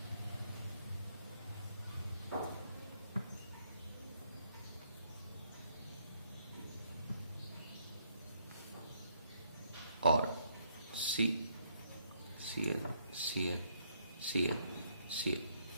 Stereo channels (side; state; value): both; inverted; correlation -0.71